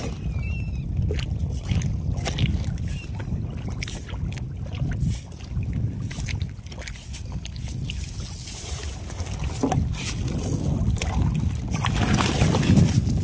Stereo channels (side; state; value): both; identical; correlation 1.00